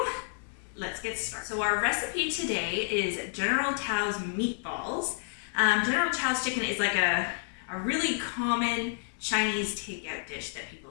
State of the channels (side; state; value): right; silent; digital silence